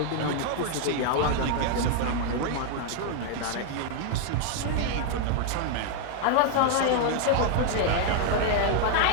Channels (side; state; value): both; different; correlation 0.00